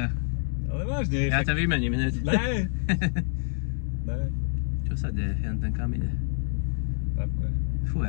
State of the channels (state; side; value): silent; right; digital silence